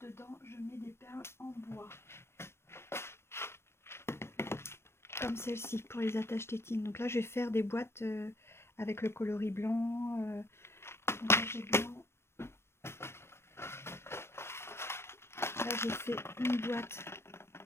dedans je mets des perles en bois. Comme celle-ci pour les attaches tétines. Donc là je vais faire des boîtes avec le coloris blanc. Donc là j'ai blanc. Là j'ai fait une boîte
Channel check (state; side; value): late; right; 0.12 ms